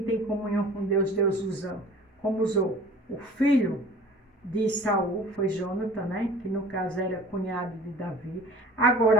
tem comunhão com Deus, Deus usa, como usou o filho de Saul, foi Jonatã, né? Que no caso era cunhado de Davi.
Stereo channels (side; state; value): both; normal; correlation 0.45